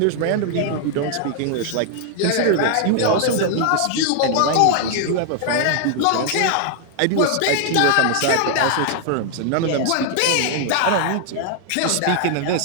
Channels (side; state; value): both; different; correlation 0.00